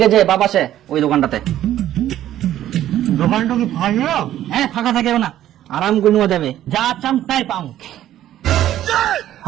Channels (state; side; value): quieter; left; 12.5 dB